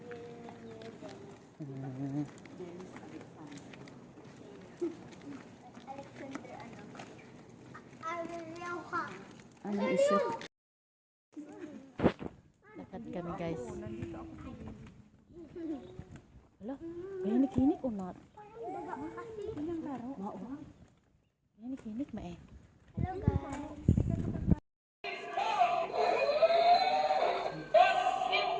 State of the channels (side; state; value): both; identical; correlation 1.00